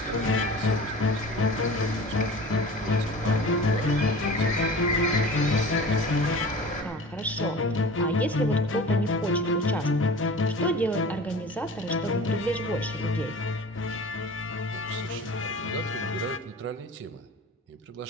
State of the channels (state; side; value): normal; both; correlation 0.38